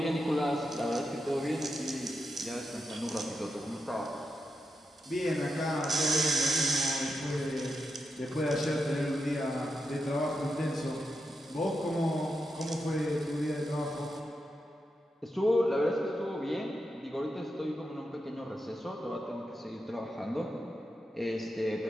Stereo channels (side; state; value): both; normal; correlation 0.86